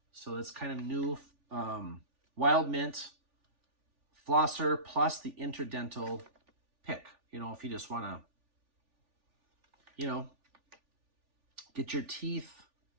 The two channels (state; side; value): late; left; 3.4 ms